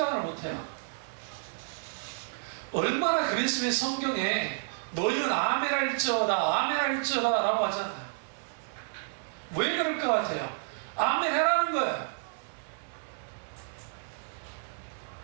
못해요. 얼마나 그랬으면 성경에 너희는 아멘 할지어다 아멘 할지어다 라고 하잖아요. 왜 그럴 것 같아요? 아멘 해라는 거예요.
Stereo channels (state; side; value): silent; left; digital silence